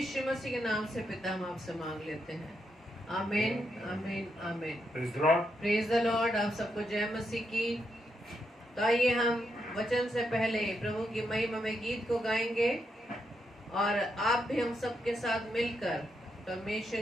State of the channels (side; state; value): both; normal; correlation 0.81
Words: मसीह के नाम से पिता हम आपसे मांग लेते हैं। आमीन आमीन आमीन। Praise the Lord. Praise the Lord. आप सबको जय मसीह की। तो आइए हम वचन से पहले प्रभु की महिमा में गीत को गाएंगे और आप भी हम सबके साथ मिलकर